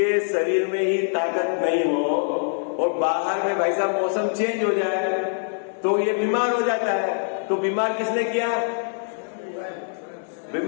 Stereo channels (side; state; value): right; silent; digital silence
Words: शरीर में ही ताकत नहीं हो और बाहर में भाई साहब मौसम चेंज हो जाए तो ये बीमार हो जाता है। तो बीमार किसने किया?